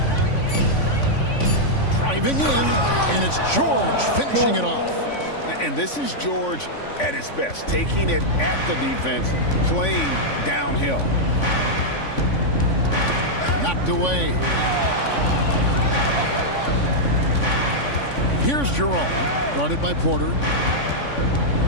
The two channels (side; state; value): right; late; 3.5 ms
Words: Driving in, and it's George finishing it off. And this is George at his best, taking it at the defense, playing downhill. Knocked away. Here's Jerome, guarded by Porter.